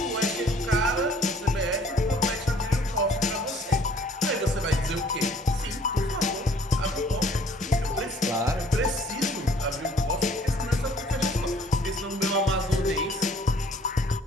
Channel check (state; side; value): normal; both; correlation 0.57